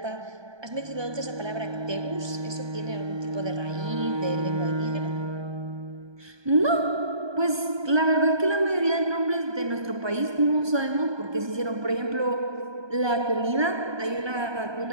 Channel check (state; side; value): late; left; 1.2 ms